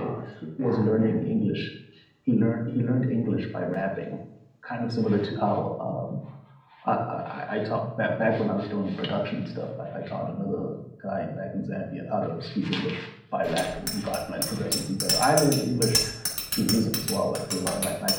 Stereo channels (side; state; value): both; identical; correlation 1.00